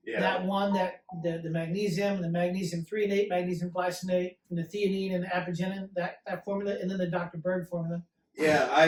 Yeah. that one that the magnesium, the magnesium threonate, magnesium glycinate, and the theanine and the apigenin, that formula, and then the Dr. Berg formula. Yeah,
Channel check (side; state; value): both; identical; correlation 1.00